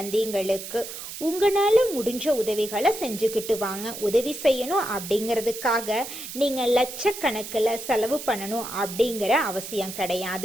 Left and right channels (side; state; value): right; noise; hiss, 10 dB below the sound